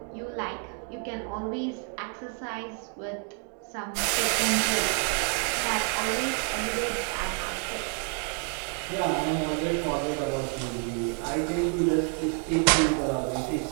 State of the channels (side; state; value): left; quieter; 37.7 dB